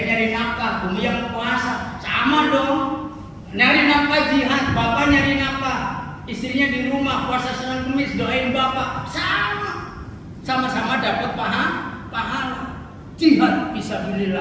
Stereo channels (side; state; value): both; identical; correlation 1.00